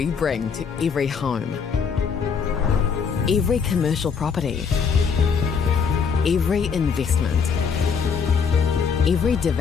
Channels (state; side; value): quieter; right; 6.1 dB